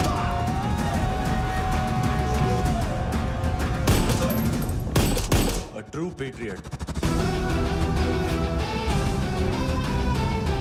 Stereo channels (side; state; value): both; identical; correlation 1.00